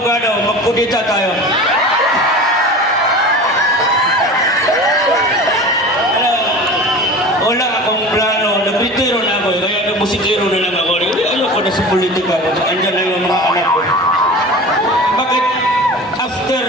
magkudita tayo. Wala akong plano, nagritiro na ako, kaya nagmusikiro na lang ako. Ayoko na sa politika, andyan na yung mga anak ko. Bakit after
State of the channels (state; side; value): normal; both; correlation 0.35